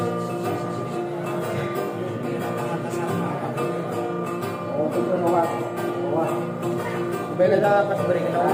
Oh, itu Nova. Bela dah pas beri kita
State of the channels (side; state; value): both; identical; correlation 1.00